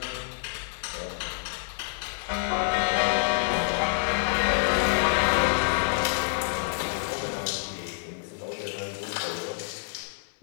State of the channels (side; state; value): right; silent; 60 dB below the other